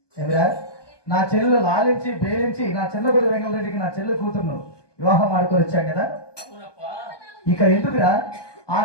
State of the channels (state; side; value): late; right; 1.2 ms